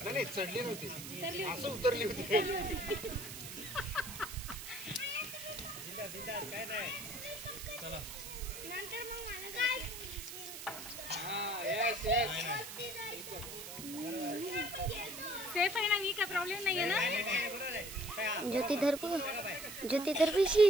नाही चढली नव्हती असं उतरली होती काय नाही चला नंतर मग मला काय हां यस यस सेफ आहे ना मी काय प्रॉब्लेम नाहीये ना ज्योती धर पिशी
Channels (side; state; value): right; noise; hiss, 9 dB below the sound